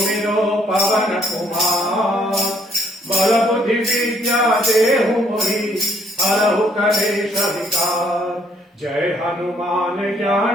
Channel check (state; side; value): normal; both; correlation 0.66